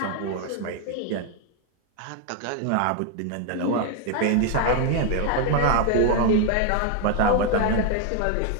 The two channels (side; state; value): both; different; correlation 0.00